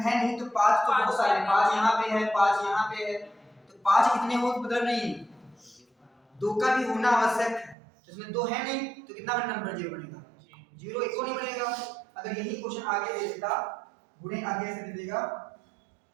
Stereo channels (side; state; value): left; drops out; at 7.8 s